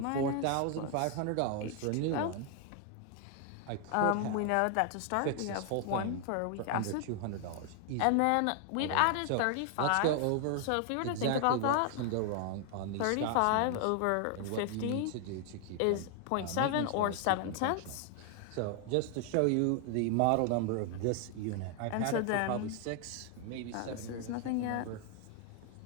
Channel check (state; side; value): different; both; correlation 0.00